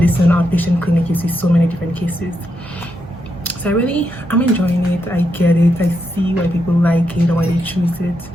outpatient clinic you see so many different cases. So I'm enjoying it. I get it. I see why people like it or why they choose it.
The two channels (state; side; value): normal; both; correlation 0.82